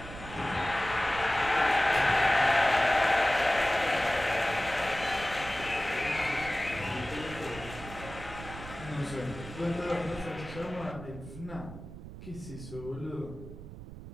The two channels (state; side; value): noise; right; rumble, 13 dB below the sound